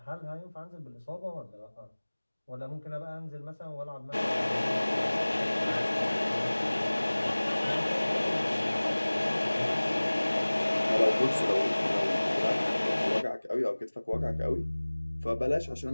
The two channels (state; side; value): inverted; both; correlation -1.00